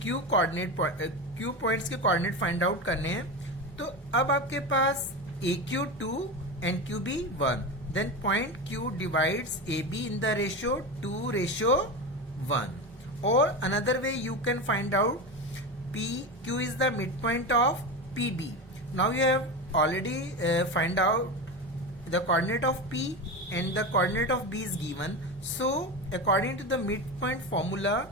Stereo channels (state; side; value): normal; both; correlation 0.21